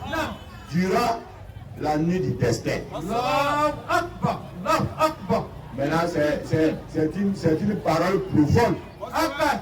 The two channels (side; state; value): both; identical; correlation 1.00